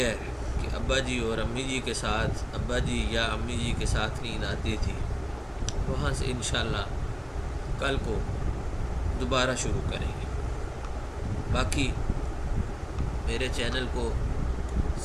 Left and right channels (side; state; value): both; identical; correlation 1.00